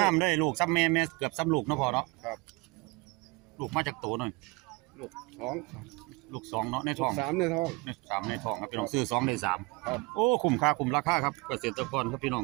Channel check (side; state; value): left; quieter; 25.4 dB